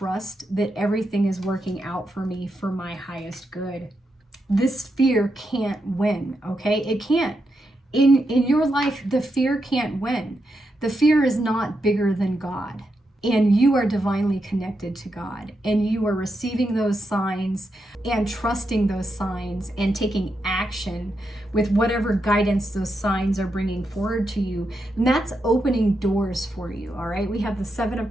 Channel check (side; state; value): both; normal; correlation 0.84